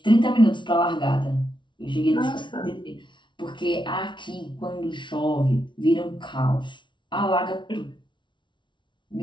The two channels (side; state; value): right; late; 0.24 ms